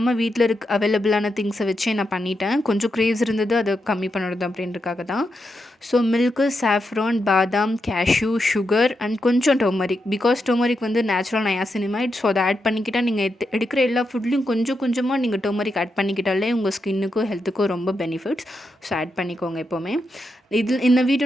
வீட்ல அவைலபிளான திங்ஸை வச்சே நான் பண்ணிட்டேன். கொஞ்சம் கிரேவ்ஸ் இருந்தது, அதை கம்மி பண்ணுறது அப்படின்றதுக்காக தான். ஸோ மில்க்கு, சாஃப்ரான், பாதாம், கேஷ்யூ, சுகர் அண்ட் கொஞ்சம் டர்மரிக். பிகாஸ் டர்மரிக் வந்து நேச்சுரல் நயாசினிமைட். ஸோ அதை ஆட் பண்ணிக்கிட்டால் நீங்கள் எடுக்கிற எல்லா ஃபுட்லேயும் கொஞ்சம் கொஞ்சமாக நீங்கள் டர்மரிக் ஆட் பண்ணிக்கிட்டாலே உங்கள் ஸ்கின்னுக்கும் ஹெல்த்துக்கும் ரொம்ப பெனிஃபிட்ஸ். ஸோ ஆட் பண்ணிக்கோங்க எப்போவுமே. இந்த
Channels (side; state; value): both; normal; correlation 0.85